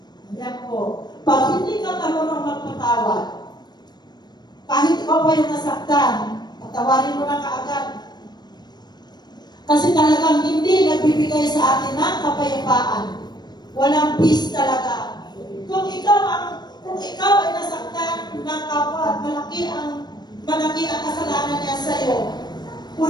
Yan po. Pag hindi ka marunong magpatawad, kahit ikaw pa yung nasaktan, patawarin mo na kaagad. Kasi talagang hindi nagbibigay sa atin ng kapayapaan. Walang peace talaga. Kung ikaw ay nasaktan ng kapwa at malaki ang kasalanan niya sa iyo,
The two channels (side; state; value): right; late; 0.20 ms